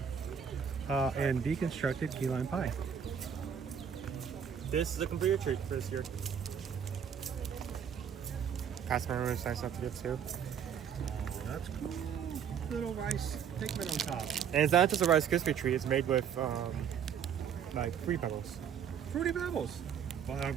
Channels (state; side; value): quieter; left; 7.9 dB